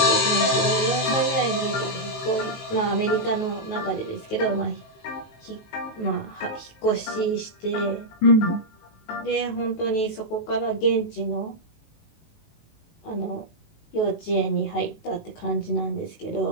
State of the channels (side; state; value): right; late; 19 ms